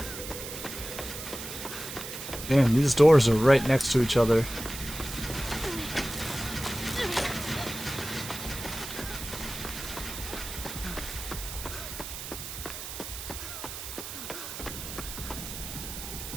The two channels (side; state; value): right; noise; hiss, 8 dB below the sound